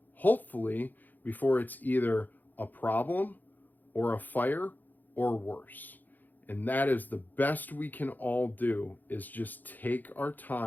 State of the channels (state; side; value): late; right; 0.085 ms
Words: hopefully, before it's either a problem or a fire or worse. And that is the best we can all do, is just take our